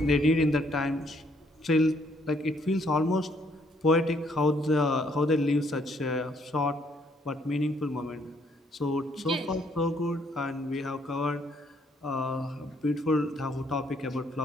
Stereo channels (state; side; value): normal; both; correlation 0.68